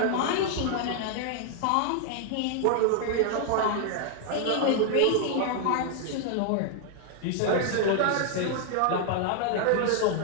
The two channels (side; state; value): both; different; correlation 0.00